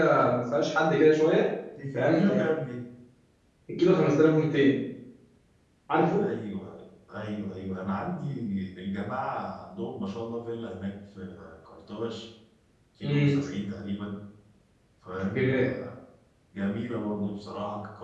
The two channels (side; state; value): both; identical; correlation 1.00